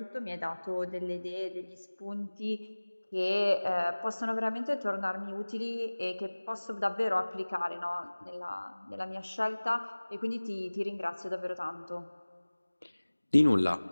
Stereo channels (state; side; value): inverted; both; correlation -1.00